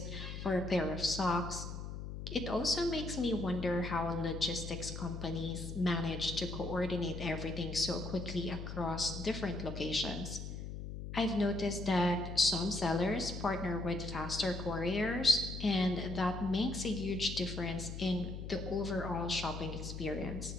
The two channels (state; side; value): noise; left; hum, 7 dB below the sound